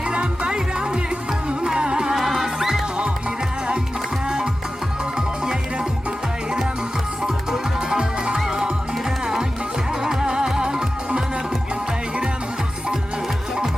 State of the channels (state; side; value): normal; both; correlation 0.94